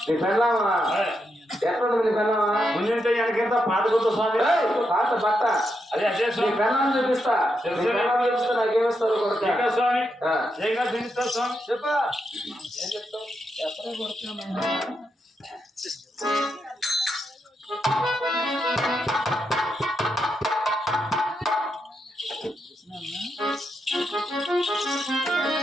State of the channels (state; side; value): normal; both; correlation 0.83